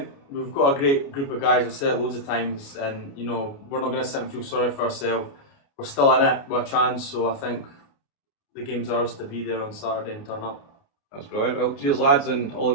we've got a great group of guys. I've said it loads of times, and we're not going to sit and feel sorry for ourselves. We're still in it with a chance, so I think the game's ours to be there on Saturday and turn up. That's brilliant. Well, cheers lads, and all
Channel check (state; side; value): late; right; 29 ms